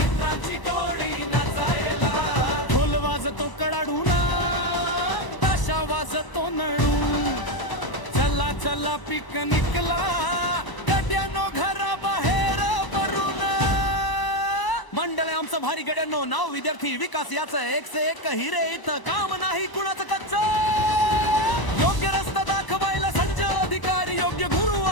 टोळी नाचायला. ढोल वाजतो कडाडूना, ताशा वाजतो नळू. चला चला पिकनिकला, गड्यानो घराबाहेर पडून. मंडळ आमचं भारी गड्यांनो, नाव विद्यार्थी विकास याचं. एक से एक हिरे, इथं काम नाही कुणाचं कच्च. योग्य रस्ता दाखवायला संजय अधिकारी, योग्य गुरु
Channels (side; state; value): right; late; 1.0 ms